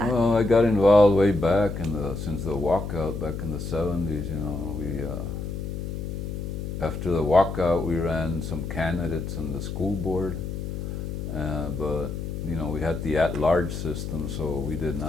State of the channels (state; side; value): noise; left; hum, 5 dB below the sound